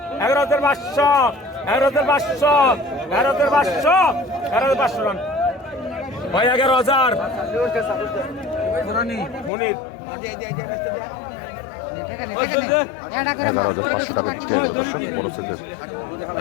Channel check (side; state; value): right; drops out; at 9.5 s